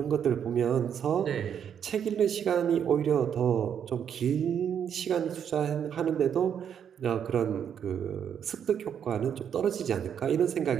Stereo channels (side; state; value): left; quieter; 8.4 dB